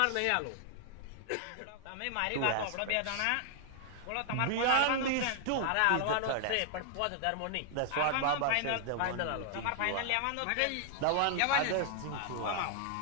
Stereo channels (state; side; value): different; both; correlation 0.00